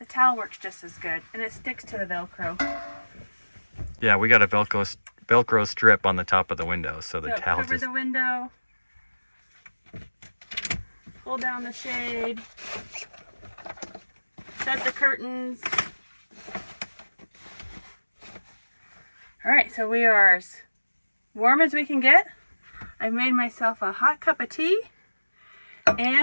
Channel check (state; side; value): inverted; both; correlation -1.00